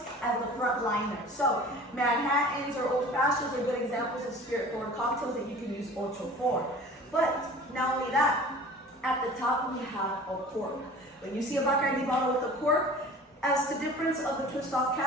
as the front liner. So, Manhattans or Old Fashions are good examples of spirit-forward cocktails that you can use Ocho for. But not only that, at the top we have a cork. When you see a Bacardi bottle with a cork, As the difference of the twist off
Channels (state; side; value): normal; both; correlation 0.43